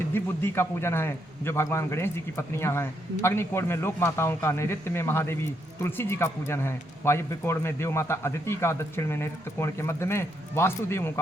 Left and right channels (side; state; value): both; normal; correlation 0.77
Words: बुद्धि का पूजन है जो भगवान गणेश जी की पत्नियां हैं। अग्नि कोण में लोक माताओं का, नैऋत्य में महादेवी तुलसी जी का पूजन है। वायव्य कोण में देव माता अदिति का, दक्षिण में नैऋत्य कोण के मध्य में वास्तुदेवों का